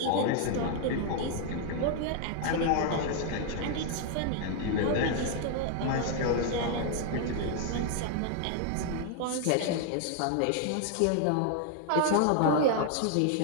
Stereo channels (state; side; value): different; both; correlation 0.00